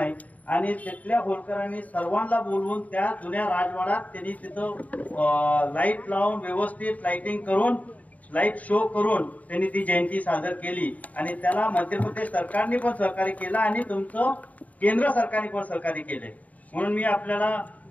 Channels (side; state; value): right; late; 0.071 ms